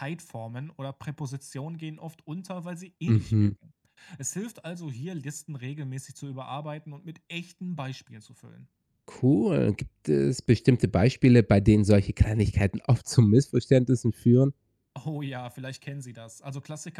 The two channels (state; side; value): identical; both; correlation 1.00